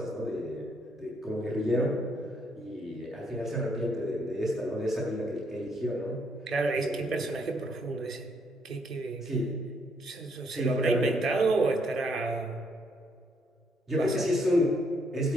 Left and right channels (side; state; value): both; normal; correlation 0.71